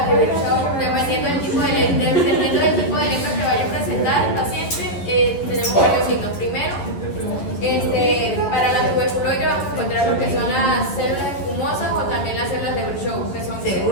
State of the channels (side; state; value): right; late; 11 ms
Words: prevención, dependiendo del tipo de lepra que vaya a presentar el paciente, tenemos varios signos. Primero, para la tuberculoide vamos a encontrar lo que son las células espumosas o también las células de Virchow, que son